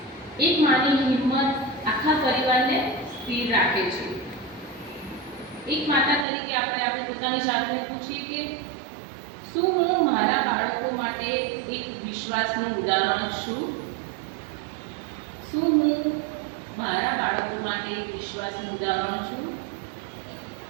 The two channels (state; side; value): drops out; left; at 6.2 s